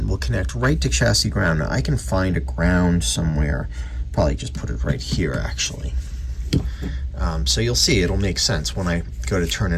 will connect right to chassis ground. Now I can find a ground somewhere. Probably just put it right here, actually. So you'll see it'll make sense. When I go to turn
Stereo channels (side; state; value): both; identical; correlation 1.00